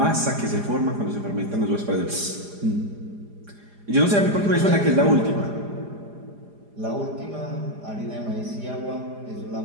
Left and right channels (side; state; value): left; late; 4.9 ms